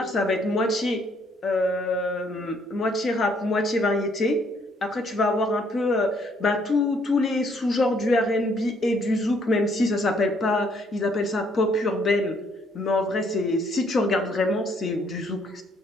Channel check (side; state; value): both; normal; correlation 0.67